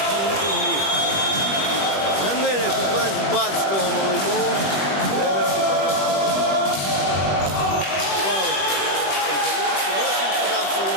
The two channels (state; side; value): late; right; 21 ms